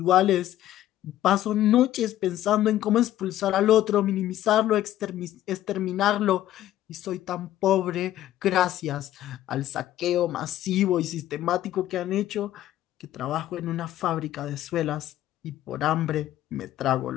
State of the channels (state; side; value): quieter; right; 13.2 dB